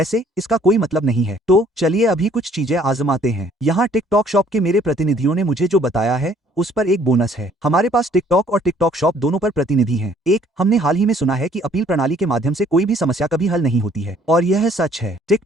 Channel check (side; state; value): both; normal; correlation 0.60